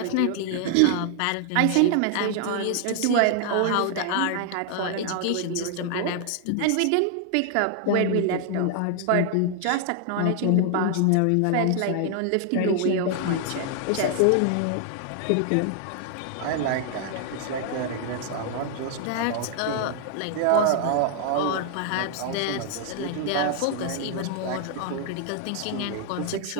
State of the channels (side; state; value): both; different; correlation 0.00